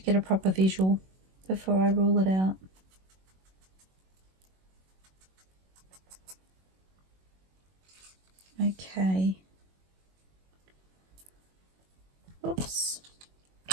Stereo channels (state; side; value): late; left; 21 ms